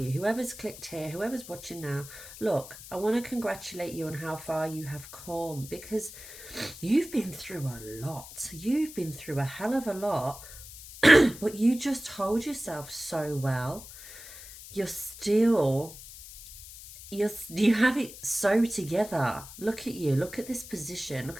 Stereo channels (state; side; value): noise; left; hiss, 15 dB below the sound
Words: Whoever's clicked here, whoever's watching now, look, I want to congratulate you on how far you have come, because you've been through a lot. You've been through a hell of a lot, but you just hold yourself so well. You have it so together. Look at you. Look at this position.